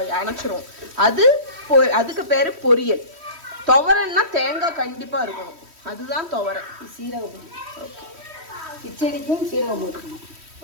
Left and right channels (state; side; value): late; left; 3.1 ms